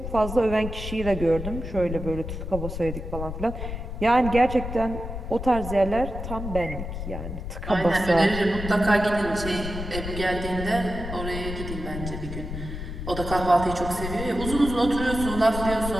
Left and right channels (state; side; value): noise; left; rumble, 7 dB below the sound